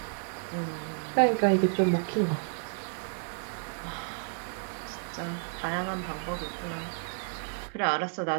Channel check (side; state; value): left; silent; 57 dB below the other